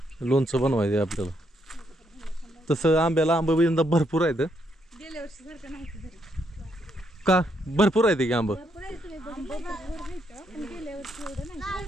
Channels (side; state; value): both; normal; correlation 0.76